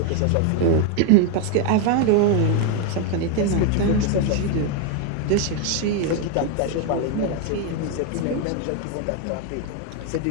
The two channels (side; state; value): both; different; correlation 0.01